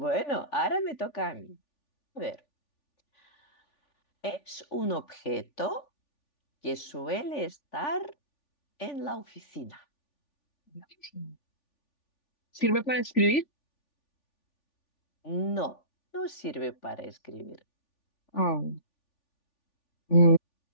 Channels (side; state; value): right; late; 3.4 ms